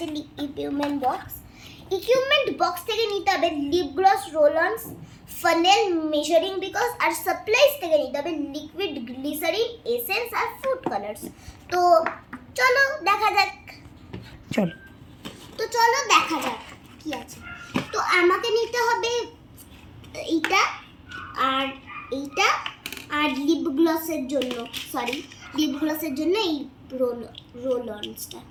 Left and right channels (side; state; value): both; identical; correlation 1.00